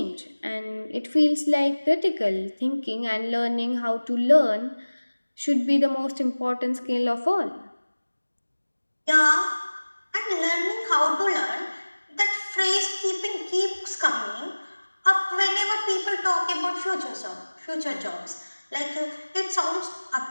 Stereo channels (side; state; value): both; inverted; correlation -1.00